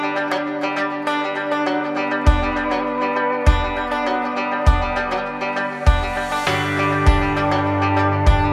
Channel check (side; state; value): both; identical; correlation 1.00